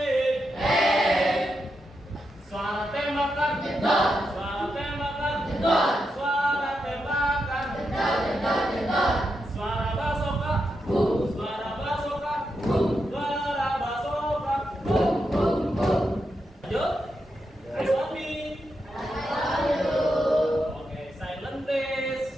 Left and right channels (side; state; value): both; normal; correlation 0.85